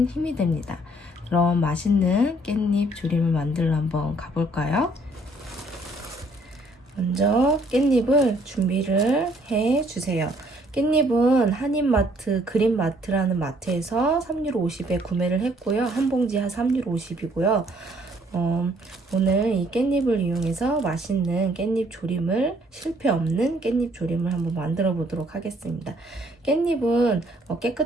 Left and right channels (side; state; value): both; normal; correlation 0.64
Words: 힘이 됩니다. 그럼 맛있는 깻잎 조림을 만들러 한번 가볼까요? 먼저 깻잎을 준비를 해주세요. 깻잎은 한인마트, 그린마트라는 마트에서 3유로 50에 구매를 했고요. 한 봉지에 3유로 50이고요. 오늘 이 깻잎을 이용해서 맛있는 깻잎 조림을, 실패 없는 깻잎 조림을 한번 만들어 보도록 하겠습니다. 깻잎은